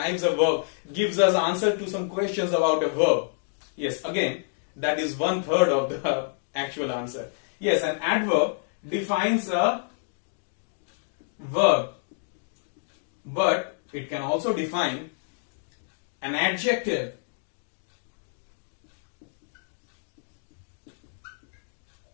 a verb, gives us answer to some questions about a verb. Yes, again, that is 1/3 of the actual answer. Yes, an adverb defines a verb, but it can also define an adjective.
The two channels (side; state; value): right; silent; digital silence